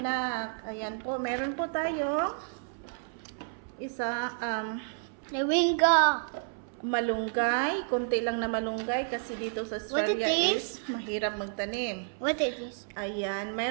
Ayan po. Meron po tayong isa Moringa. malunggay, konti lang na malunggay kasi dito sa Australia What it is mahirap magtanim. What is this? Ayan,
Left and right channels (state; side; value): silent; left; 57 dB below the other